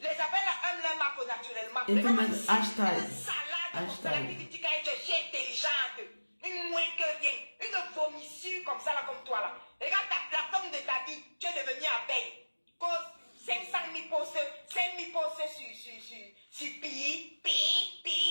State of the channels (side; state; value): both; inverted; correlation -1.00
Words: là aiment leur marque naturellement. Et vous mettez hashtag. Une salade comme ça là qui dit qu'elle est intelligente. Une moins que rien. Une vomissure comme ça là comme toi là. Regarde la femme de ta vie. Tu es devenu abeille. Cause 500 000 postes sur pi.